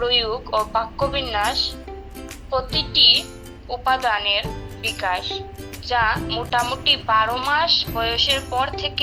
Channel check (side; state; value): both; identical; correlation 1.00